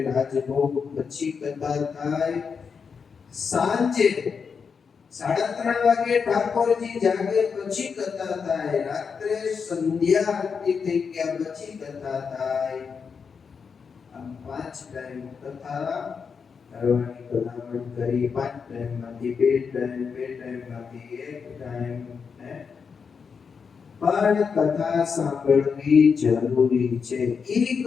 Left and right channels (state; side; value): quieter; right; 5.9 dB